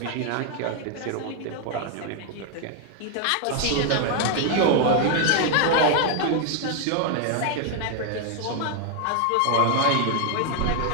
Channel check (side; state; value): both; different; correlation 0.00